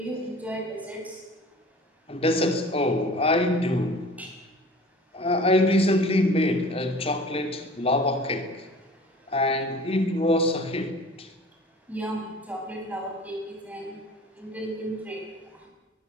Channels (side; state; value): both; normal; correlation 0.44